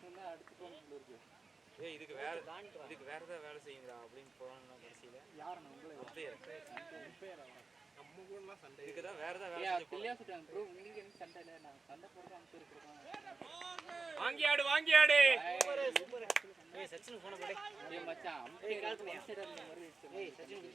என்ன அடுத்து போகணும் இருக்கு ஏய் இதுக்கு வேற ஏதாவது வேலை செய்யுங்கடா அப்படின்னு போறாங்கன்னா கடைசியில யாரண்ணா உங்களே நம்ம கூடலாம் சண்டை இதுக்கு தான் வேற ஏதாவது வேலை ஏய் செஞ்சு கிளியா சொல்றாங்க ப்ரோ உங்களுக்கு என்ன சண்டை இல்ல நான் சண்டை போடுறது அங்க இருக்கறோம் வாங்கி ஆடு சூப்பர் ஏய் சச்சின் போன போடே ஏய் மச்சான் அம்பையர் கால்ஸ் அந்த மாதிரி ஏய் சச்சின்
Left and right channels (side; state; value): left; quieter; 4.1 dB